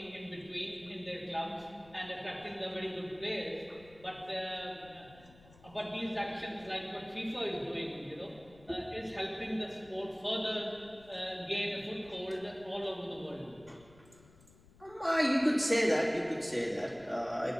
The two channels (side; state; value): left; noise; rumble, 24 dB below the sound